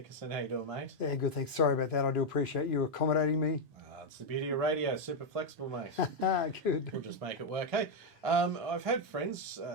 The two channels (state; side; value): normal; both; correlation 0.01